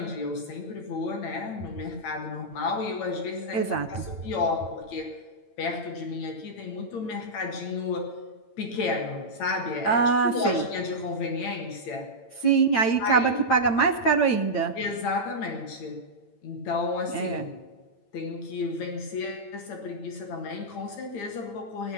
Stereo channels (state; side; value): late; right; 8.9 ms